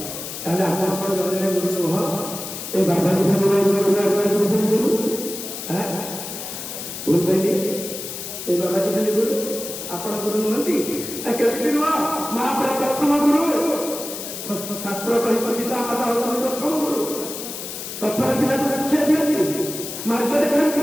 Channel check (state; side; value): noise; left; hiss, 8 dB below the sound